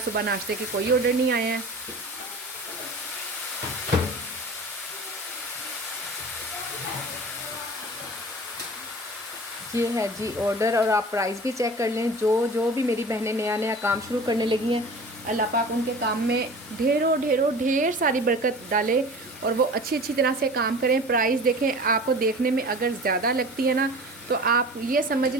सुबह नाश्ते के कोई ऑर्डर नहीं आए हैं। ये है जी ऑर्डर, और आप प्राइस भी चेक कर लें। जो भी मेरी बहनें नया नया काम शुरू करने लगी हैं, अल्लाह पाक उनके काम में ढेर सारी बरकत डाले और वो अच्छी तरह से काम करें। प्राइस देखें, आपको देखने में अगर ज़्यादा लगती है ना, तो आप ये समझ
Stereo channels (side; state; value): both; normal; correlation 0.39